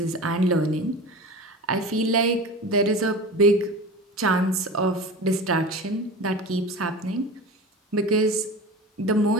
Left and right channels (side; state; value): both; normal; correlation 0.32